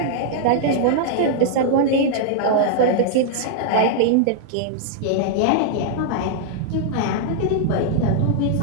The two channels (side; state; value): both; different; correlation -0.01